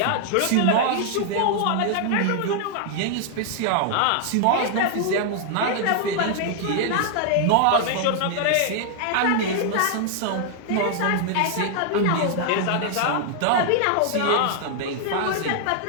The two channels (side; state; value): both; different; correlation 0.00